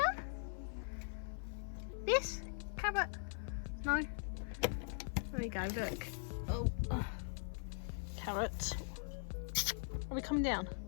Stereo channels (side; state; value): right; silent; 50 dB below the other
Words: This carrot. No. There we go. Look. Oh, carrot. Are we coming down?